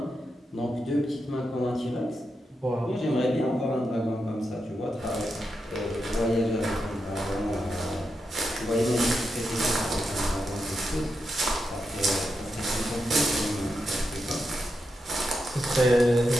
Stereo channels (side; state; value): both; normal; correlation 0.86